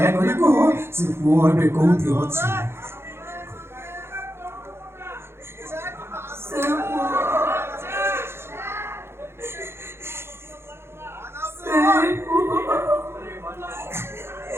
କୁହ ସେ ପୁଅ ଏବେ କୋଉଠି ଅଛି।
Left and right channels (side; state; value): left; late; 0.12 ms